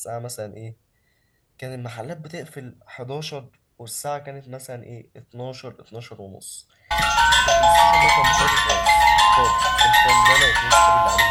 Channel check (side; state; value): both; identical; correlation 1.00